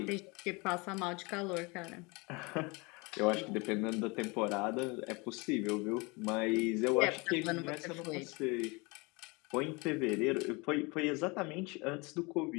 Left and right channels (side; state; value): right; quieter; 27.1 dB